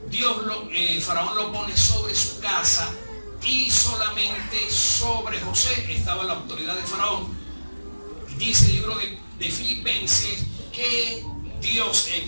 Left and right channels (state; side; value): inverted; both; correlation -1.00